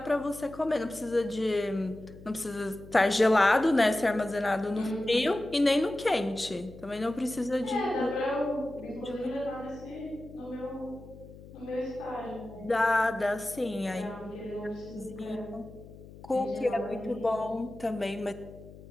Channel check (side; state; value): left; noise; hum, 18 dB below the sound